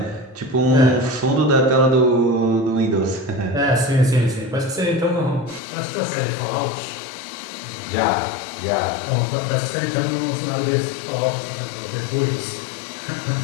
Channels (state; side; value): drops out; right; at 5.6 s